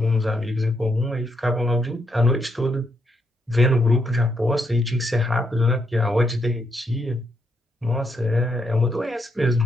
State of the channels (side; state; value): both; normal; correlation 0.78